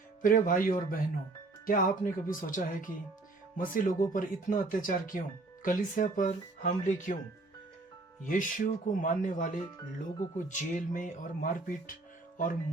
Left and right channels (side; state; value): left; quieter; 3.3 dB